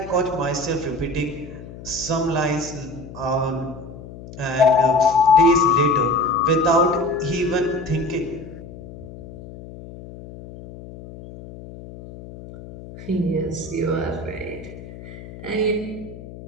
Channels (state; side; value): noise; left; hum, 15 dB below the sound